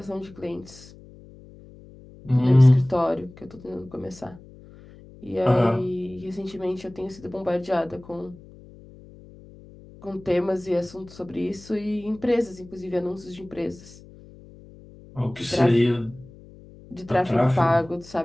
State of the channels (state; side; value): noise; left; hum, 21 dB below the sound